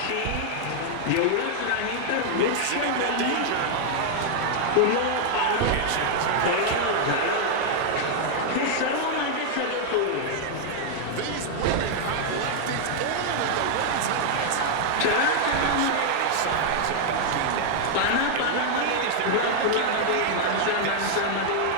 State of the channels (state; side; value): different; both; correlation 0.00